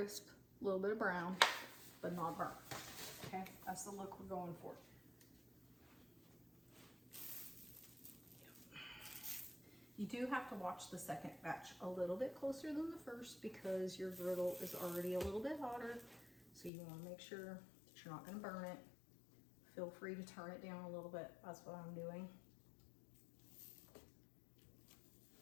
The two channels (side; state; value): right; drops out; at 16.7 s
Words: a little bit of brown, but not burnt. Okay, that's the look we're going for. You do have to watch the second batch a little bit closer than the first because your griddle is already a little bit hotter. So you want to make sure that you're not going to burn it. Feel free to turn it down a little bit. That's what I'm doing.